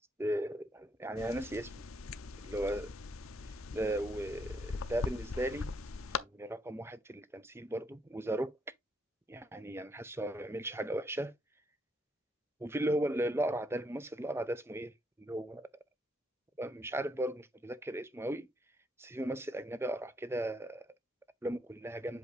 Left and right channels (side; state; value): both; normal; correlation 0.75